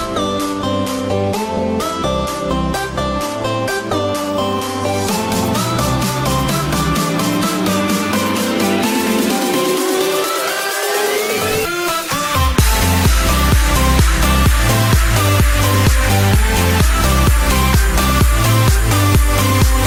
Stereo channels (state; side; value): identical; both; correlation 1.00